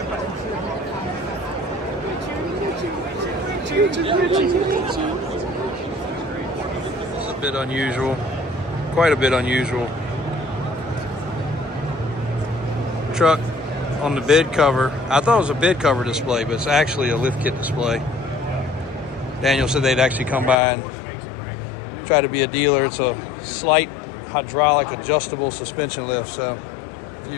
It's a bit unusual. Quite a bit unusual. Truck on the bed cover. I thought it was a bed cover display, but it's actually a lift kit display. Daniel said they'd actually come by and try to be a dealer. It's a slight hydraulic adjustable suspension lift. So if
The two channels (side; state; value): right; drops out; at 20.6 s